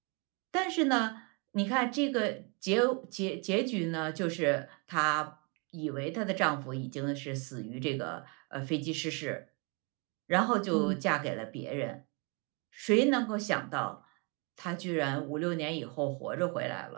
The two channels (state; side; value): quieter; left; 32.4 dB